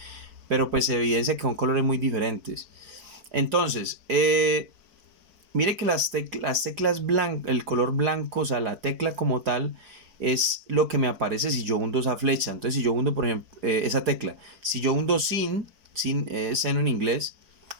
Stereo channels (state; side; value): late; left; 4.5 ms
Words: Pero pues se evidencia que son colores muy diferentes. Entonces, mire que las teclas blancas, el color blanco, o sea, la tecla como tal, es lo que me aparece si yo hundo esa flecha. Entonces, si yo hundo, por ejemplo, esa tecla, si yo hundo sin seno en inglés,